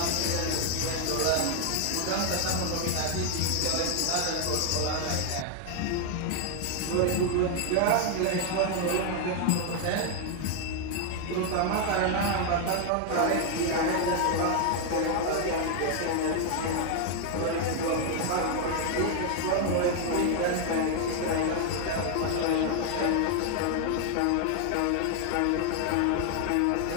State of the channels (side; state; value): both; different; correlation 0.00